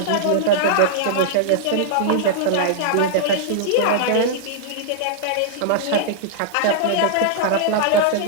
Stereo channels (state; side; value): different; both; correlation -0.01